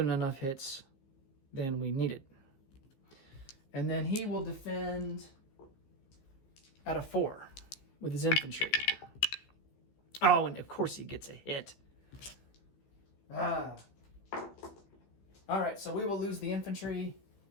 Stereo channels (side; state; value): right; late; 15 ms